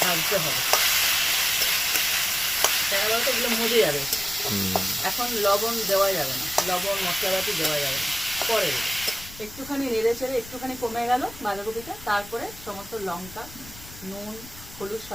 ভাজতে হবে, কেন বলতো এগুলো মজে যাবে। এখন লবণ দেওয়া যাবে না, লবণ মশলাপাতি দেওয়া যাবে না, পরে দেবে। একটুখানি নেড়ে চেড়ে একটুখানি কমে গেল বাঁধাকপিটা, তারপরে সমস্ত লঙ্কা, নুন, হলুদ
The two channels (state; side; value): noise; left; rumble, 17 dB below the sound